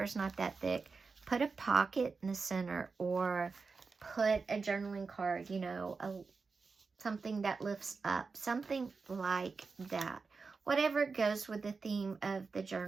not that thick, put a pocket in the center or put a journaling card, you know, something that lifts up, something like that. Whatever goes with the theme of the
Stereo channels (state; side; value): quieter; left; 4.6 dB